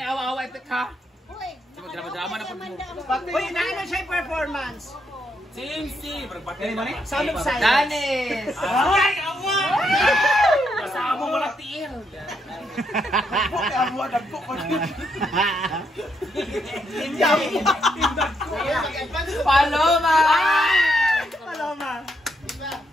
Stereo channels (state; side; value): normal; both; correlation 0.77